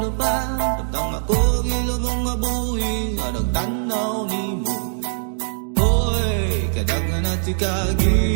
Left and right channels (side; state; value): left; silent; 65 dB below the other